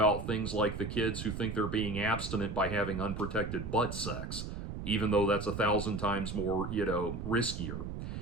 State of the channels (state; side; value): noise; right; rumble, 6 dB below the sound